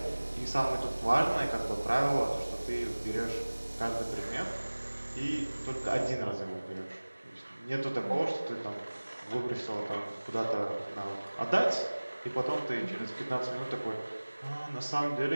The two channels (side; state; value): both; inverted; correlation -1.00